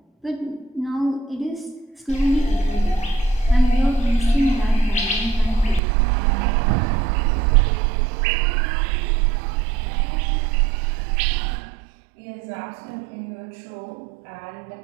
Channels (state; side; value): drops out; left; at 5.8 s